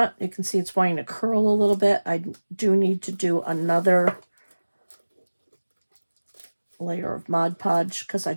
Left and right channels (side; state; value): both; inverted; correlation -1.00